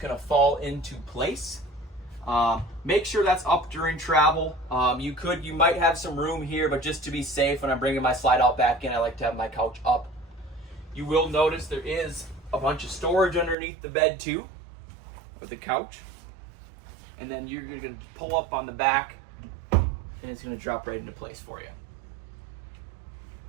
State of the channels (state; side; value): drops out; left; at 13.6 s